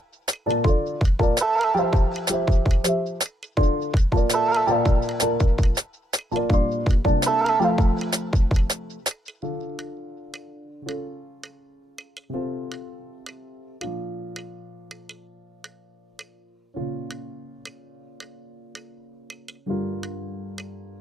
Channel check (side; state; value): both; normal; correlation 0.81